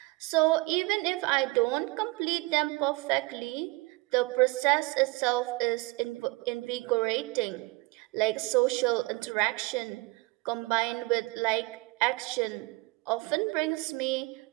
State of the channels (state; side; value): quieter; left; 24.0 dB